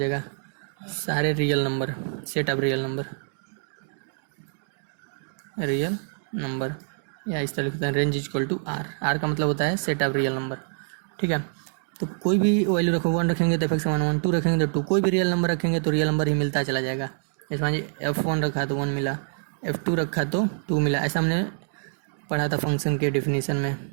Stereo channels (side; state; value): left; silent; digital silence